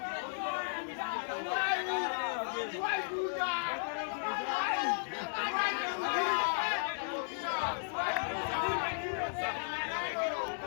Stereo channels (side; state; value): right; silent; digital silence